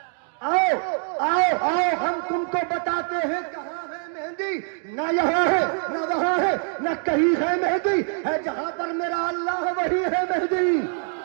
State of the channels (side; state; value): left; silent; 55 dB below the other